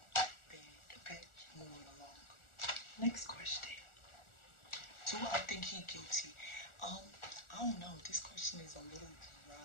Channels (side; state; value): right; late; 1.4 ms